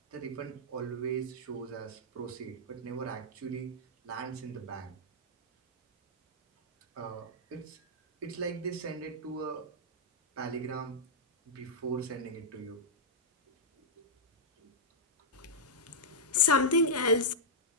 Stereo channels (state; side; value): normal; both; correlation -0.10